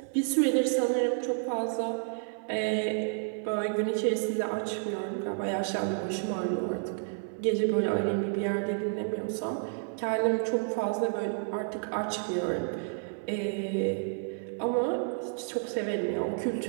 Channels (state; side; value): silent; left; 58 dB below the other